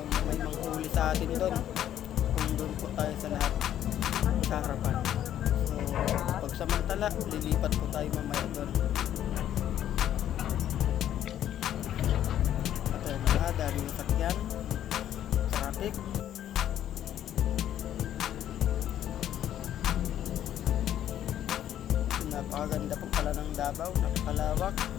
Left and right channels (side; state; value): right; quieter; 11.1 dB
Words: manghuli sa atin doon kung doon po tayo sa lahat sa harapan. So pagsamantala, lilipat po tayo mamaya doon. Daming sakyan, traffic. Napakaganda po pala ng Davao, napakalawak